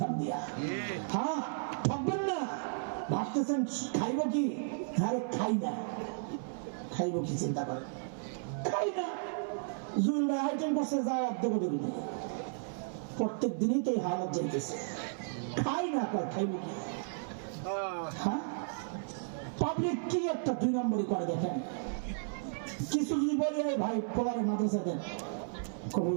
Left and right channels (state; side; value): silent; left; 55 dB below the other